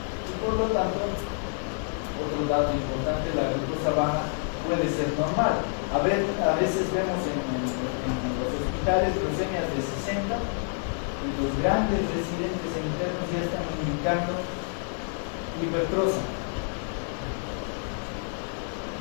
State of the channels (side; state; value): right; silent; 59 dB below the other